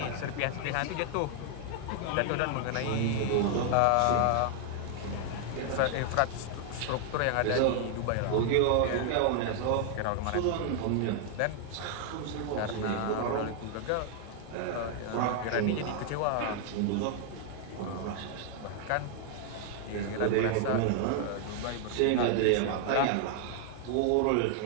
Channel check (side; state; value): both; different; correlation 0.00